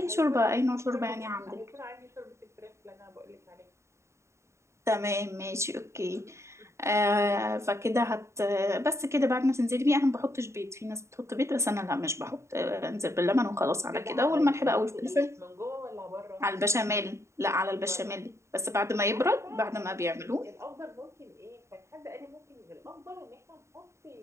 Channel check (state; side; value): late; left; 0.14 ms